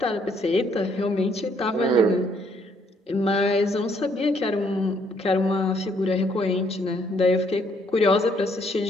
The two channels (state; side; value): normal; both; correlation 0.68